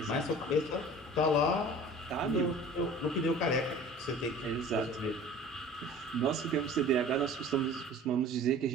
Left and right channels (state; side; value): normal; both; correlation 0.44